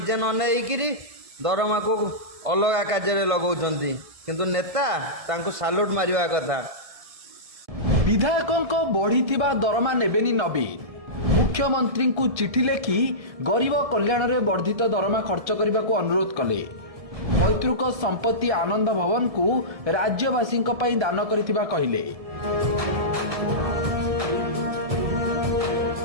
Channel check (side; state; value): left; late; 1.7 ms